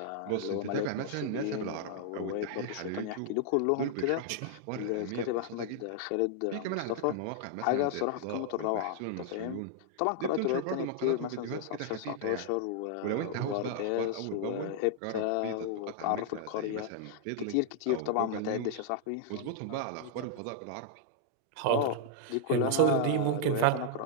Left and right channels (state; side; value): different; both; correlation -0.01